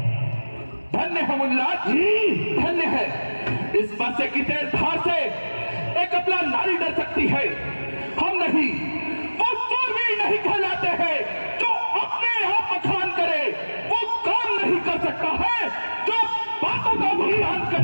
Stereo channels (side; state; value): both; inverted; correlation -1.00